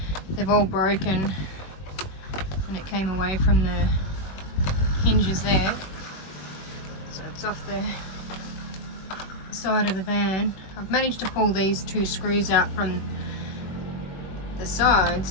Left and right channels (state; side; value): late; right; 21 ms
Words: They've all broken and it came away from the hinges there. So it's off the side of the van. I've managed to pull these two screws out from the